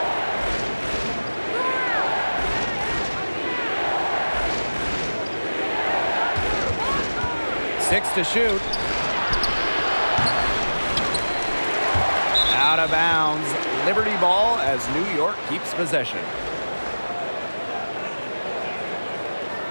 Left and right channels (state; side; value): inverted; both; correlation -1.00